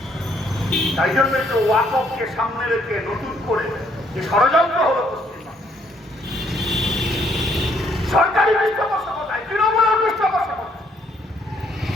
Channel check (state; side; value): normal; both; correlation 0.68